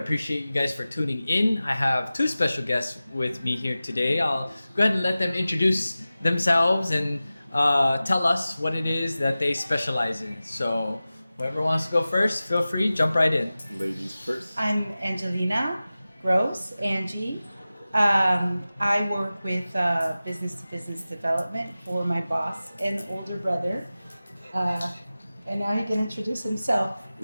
you guys for tuning in. I have two special guests with me here today. I'll go ahead and let them introduce themselves and tell us what it is that they specialize in. So whoever wants to go first, feel free, jump right in. Ladies first. I'm Angelina Gross, Angie. I work with business-to-business development for my boss and older brother. And now he can introduce himself.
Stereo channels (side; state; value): both; inverted; correlation -0.96